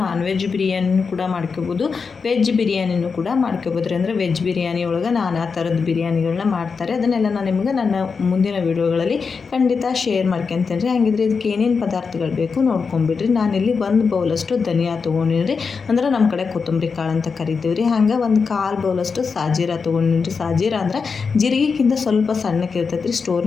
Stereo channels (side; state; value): right; quieter; 5.2 dB